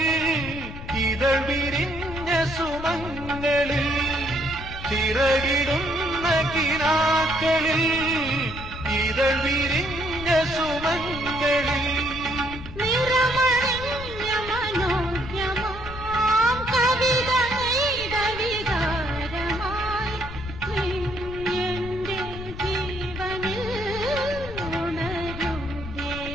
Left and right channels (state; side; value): noise; left; rumble, 11 dB below the sound